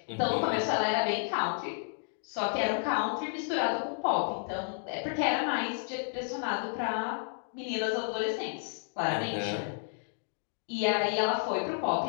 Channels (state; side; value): silent; right; 57 dB below the other